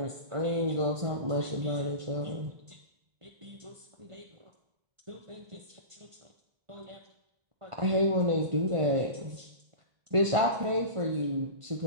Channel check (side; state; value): left; late; 1.5 ms